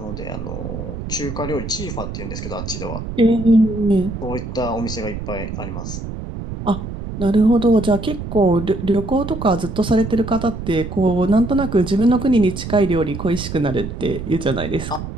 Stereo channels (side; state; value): right; noise; rumble, 7 dB below the sound